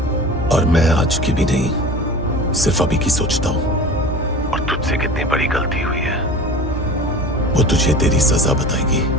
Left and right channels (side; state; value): both; normal; correlation 0.37